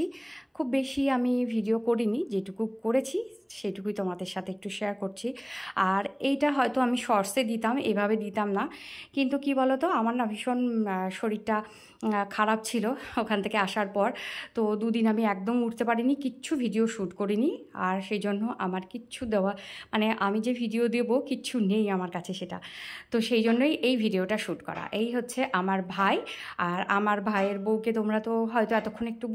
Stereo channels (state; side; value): identical; both; correlation 1.00